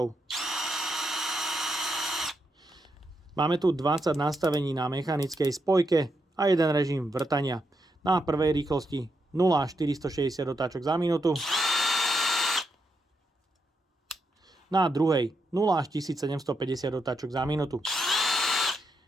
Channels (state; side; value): normal; both; correlation 0.82